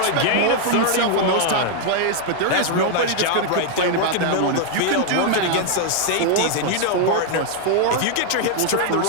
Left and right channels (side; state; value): both; different; correlation 0.00